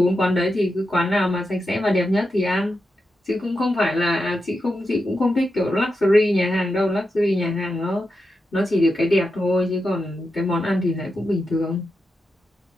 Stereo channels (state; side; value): normal; both; correlation 0.88